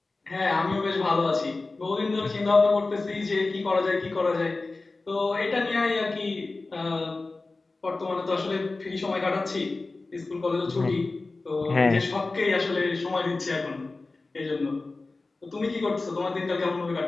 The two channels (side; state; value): right; quieter; 3.5 dB